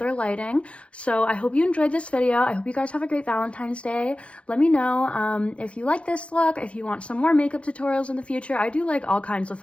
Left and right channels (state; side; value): late; right; 0.061 ms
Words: lighting. So I hope you enjoyed this video. I hope you guys have a great Valentine's Day. Let me know if you like this look, if you want some more makeup tutorials in the future. I do like all kinds of